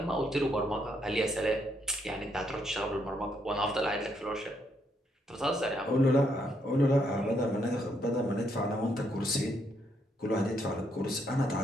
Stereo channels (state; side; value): normal; both; correlation 0.75